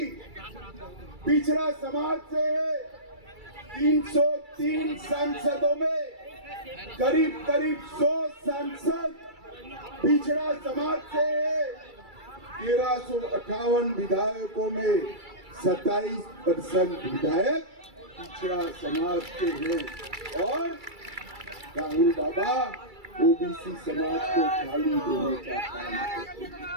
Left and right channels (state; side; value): late; left; 2.3 ms